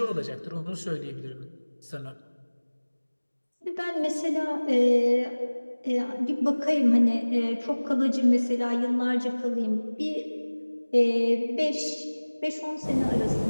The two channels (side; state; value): both; inverted; correlation -1.00